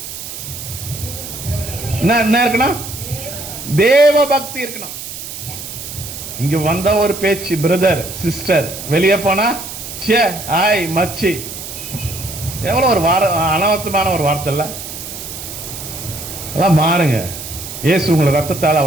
என்ன இருக்கணும்? தேவ பக்தி இருக்கணும். இங்க வந்த ஒரு பேச்சு, பிரதர் சிஸ்டர், வெளியே போனா சே ஆய் மச்சி, எவ்வளவு ஒரு அனவர்த்தமான ஒரு வார்த்தை இல்ல? எல்லாம் மாறுங்க. இயேசு உங்களை ரத்தத்தால்,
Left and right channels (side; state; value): right; noise; hiss, 10 dB below the sound